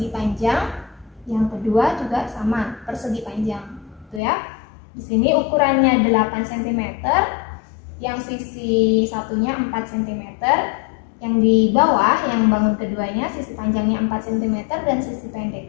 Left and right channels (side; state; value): right; drops out; at 4.2 s